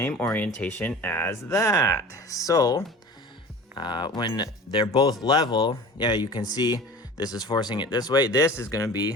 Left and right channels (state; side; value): normal; both; correlation 0.39